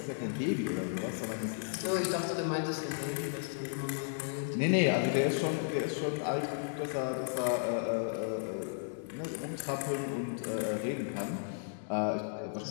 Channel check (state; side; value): silent; right; digital silence